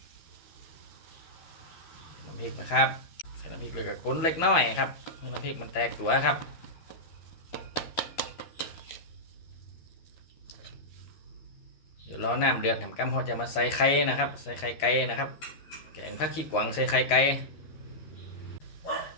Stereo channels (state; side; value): late; right; 13 ms